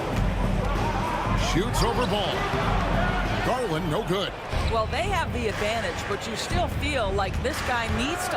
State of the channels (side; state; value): both; identical; correlation 1.00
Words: Shoots over Ball. Garland, no good. Well, they have the advantage, but you still feel like this guy needs